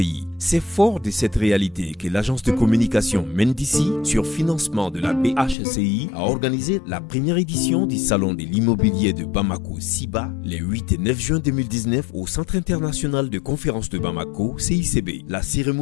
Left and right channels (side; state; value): right; drops out; at 5.6 s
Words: C'est fort de cette réalité que l'agence de communication Mendici, sur financement de la BHCI, a organisé la première édition du Salon de l'immobilier de Bamako, SIBA, les 8 et 9 juin 2019 au Centre international de conférences de Bamako, CICB. La